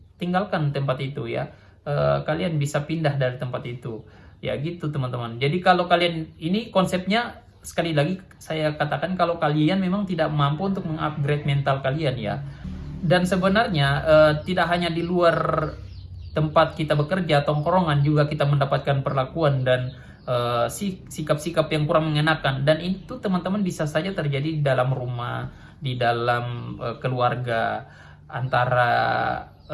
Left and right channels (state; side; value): identical; both; correlation 1.00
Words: tinggalkan tempat itu ya. Kalian bisa pindah dari tempat itu ya, gitu teman-teman. Jadi kalau kalian, ini konsepnya sekali lagi saya katakan, kalau kalian memang tidak mampu untuk mengupgrade mental kalian ya. Dan sebenarnya tidak hanya di luar tempat kita bekerja, tongkrongan juga kita mendapatkan perlakuan dan sikap-sikap yang kurang mengenakan. Dan itu teman-teman bisa saja terjadi di dalam rumah, di dalam keluarga, antara